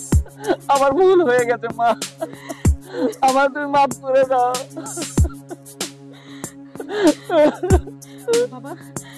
আমার ভুল হয়ে গেছে মা, আমার তুমি মাফ করে দাও। বাবা,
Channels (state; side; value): identical; both; correlation 1.00